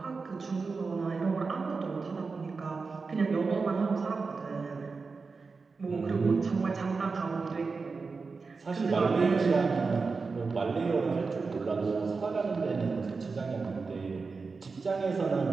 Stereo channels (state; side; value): quieter; left; 4.5 dB